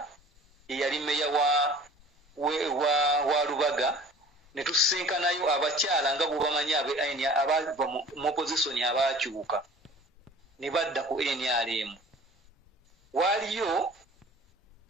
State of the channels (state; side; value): normal; both; correlation 0.46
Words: eyali mmeya wa Lubaga. Ne tusisinkanayo abakyala nga bwebamanyi abava mu opozisoni abaakyuka ne badda ku NRM. Waaliyo